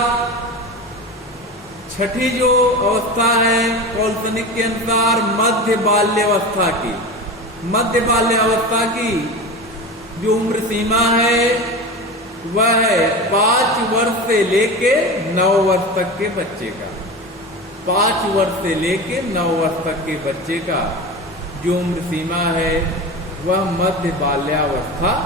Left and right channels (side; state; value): both; normal; correlation 0.28